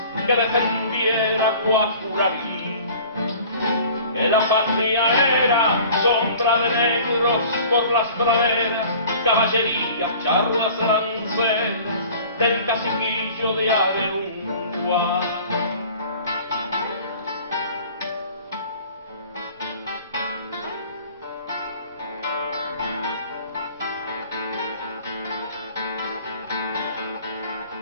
que defendiera Guacurarí. Que la patria era sombra de negros por las praderas, caballería, charlas lanceras del caciquillo de Averungua.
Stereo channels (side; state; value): both; inverted; correlation -0.47